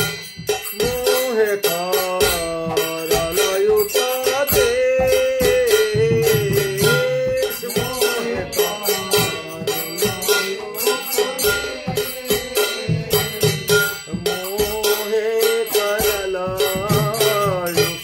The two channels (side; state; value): both; identical; correlation 1.00